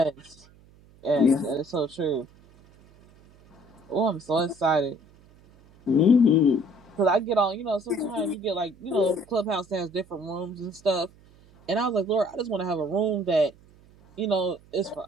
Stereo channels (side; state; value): right; noise; hum, 27 dB below the sound